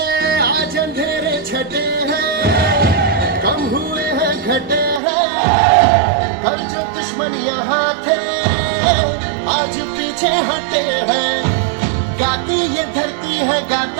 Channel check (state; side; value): drops out; left; at 5.0 s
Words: आज अंधेरे छटे हैं, कम हुए हैं घटे हैं, हर जो दुश्मन यहाँ थे आज पीछे हटे हैं। गाती ये धरती है,